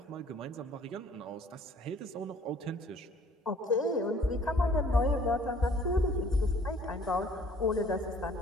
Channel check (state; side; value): normal; both; correlation 0.56